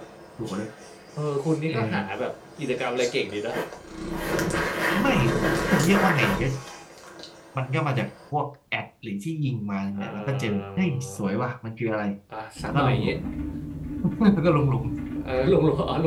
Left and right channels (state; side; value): identical; both; correlation 1.00